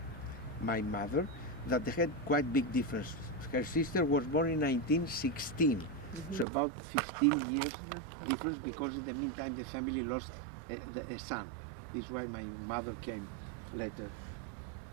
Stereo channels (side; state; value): left; drops out; at 6.5 s